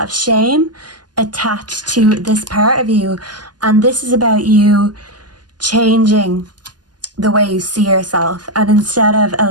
of shame attached to this part of you. And this is about you changing the way you see yourself. And instead of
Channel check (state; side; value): late; left; 0.70 ms